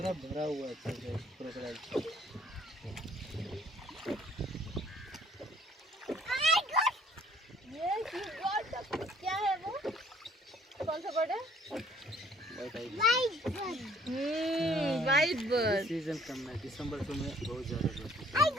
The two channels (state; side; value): normal; both; correlation 0.58